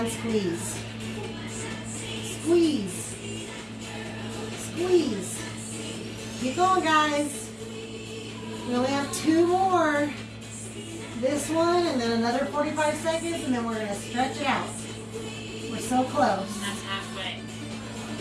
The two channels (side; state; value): both; identical; correlation 1.00